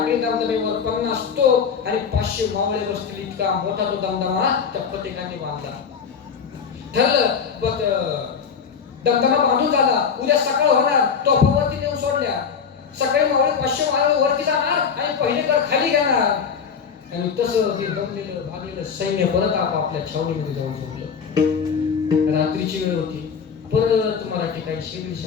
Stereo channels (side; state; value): right; quieter; 6.5 dB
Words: दमदमेवर 50 तोफ आणि 500 मावळे बसतील इतका मोठा तो दमदमा त्या फतेह खानाने बांधला. ठरलं दमदमा बांधून झाला, उद्या सकाळ होणार, तोफावरती नेऊन सोडल्या. सकाळी मावळे 500 मावळे वरती जाणार आणि पहिले तर खाली घेणार. आणि तसं ते दमलेलं भागलेलं सैन्य परत आपापल्या छावणीमध्ये जाऊन झोपलं. रात्रीची वेळ होती. परत मराठी काही 100-150